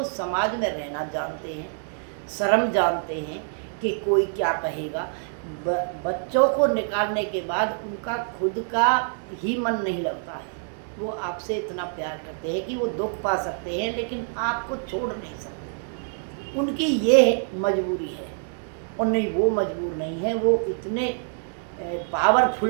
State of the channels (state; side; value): silent; left; digital silence